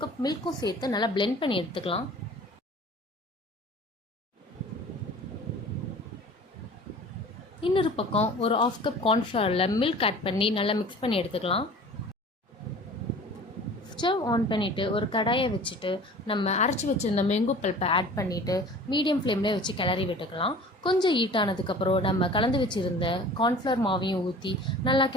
கப் மில்க்கும் சேர்த்து நல்லா பிளெண்ட் பண்ணி எடுத்துக்கலாம். இன்னொரு பக்கம் ஒரு 1/2 கப் கார்ன்ஃப்ளவரில் மில்க் ஆட் பண்ணி நல்லா மிக்ஸ் பண்ணி எடுத்துக்கலாம். ஸ்டவ் ஆன் பண்ணிவிட்டு ஒரு கடாயை வச்சுட்டு நம்ம அரைச்சி வச்சுருந்த மேங்கோ பல்ப்பை ஆட் பண்ணிவிட்டு மீடியம் ஃப்ளேம்லேயே வச்சு கிளறி விட்டுக்கலாம். கொஞ்சம் ஹீட் ஆனதுக்கப்புறம் நம்ம கலந்து வச்சுருந்த கார்ன்ஃப்ளவர் மாவையும் ஊற்றி நல்லா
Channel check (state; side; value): normal; both; correlation 0.43